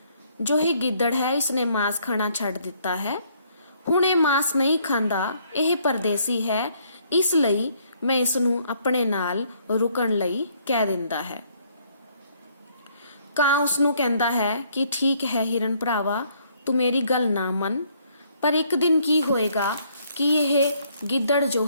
जो ही गिद्दड़ है इसने मांस खाना छड्ड दिता है, हुण ये मांस नहीं खांदा, यह परदेसी है, इसलिए मैं इसनूं अपने नाल रुकण लई कह दिंदा है। कां उसनूं कहंदा है कि ठीक है हिरण भरावा, तू मेरी गल ना मन, पर एक दिन की होएगा कि यह गिद्दड़ जो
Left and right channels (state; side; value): inverted; both; correlation -0.66